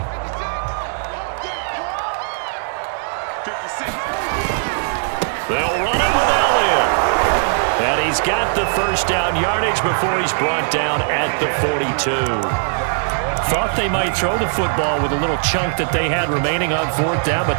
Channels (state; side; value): silent; left; digital silence